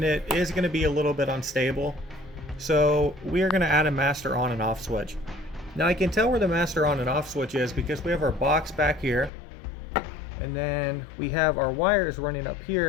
it is going to be a little bit unstable. So we are going to add a master on and off switch. Now I can tell where the master on and off switch is because we have our box back here, and then we have our wires running up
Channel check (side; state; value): right; drops out; at 9.3 s